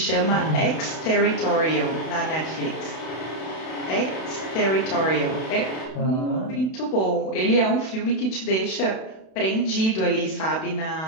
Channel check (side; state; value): right; late; 32 ms